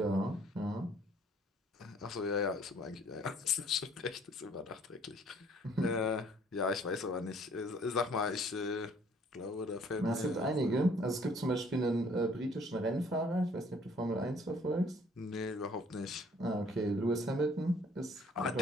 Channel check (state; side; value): normal; both; correlation 0.59